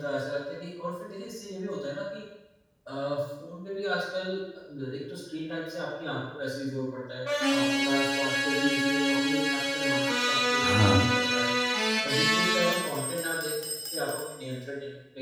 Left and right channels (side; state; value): both; identical; correlation 1.00